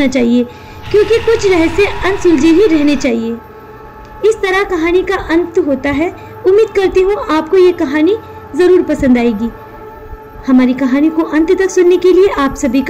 चाहिए, क्योंकि कुछ रहस्य अनसुलझे ही रहने चाहिए। इस तरह कहानी का अंत होता है। उम्मीद करती हूँ आपको ये कहानी ज़रूर पसंद आएगी। हमारी कहानी को अंत तक सुनने के लिए आप सभी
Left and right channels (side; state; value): both; identical; correlation 1.00